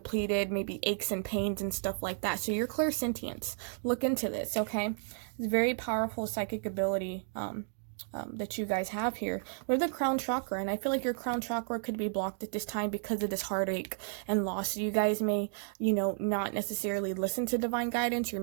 maybe aches and pains and stuff like that. So your clairsentience, look into this, okay? It's a very powerful psychic ability that you guys have here. We have the crown chakra, and I feel like your crown chakra could be blocked at this time because of this heartache and loss. So you guys may, you know, not necessarily listen to divine guidance, or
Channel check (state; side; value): silent; left; digital silence